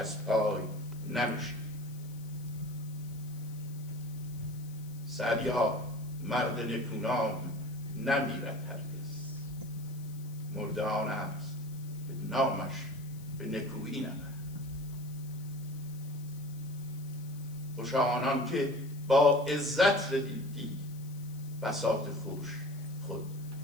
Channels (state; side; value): noise; left; hiss, 21 dB below the sound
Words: پای نمیشه. سعدی‌ها مرد نکونام نمیرد هرگز، مرده آن است که نامش به نکویی نبرد. خوشا آنان که با عزت دیدی بساط خوش خود